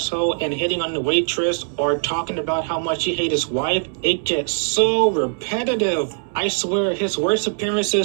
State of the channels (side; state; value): left; silent; digital silence